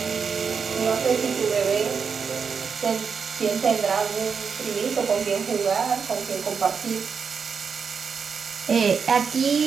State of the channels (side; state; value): left; quieter; 6.0 dB